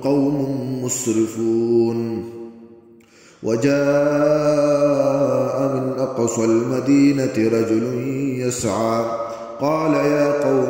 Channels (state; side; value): identical; both; correlation 1.00